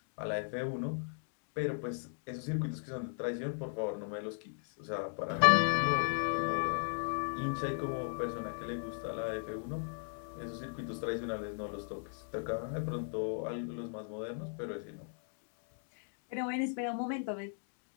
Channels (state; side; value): silent; right; digital silence